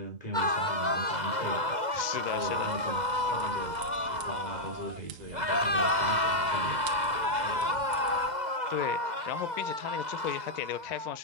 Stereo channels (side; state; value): left; late; 2.0 ms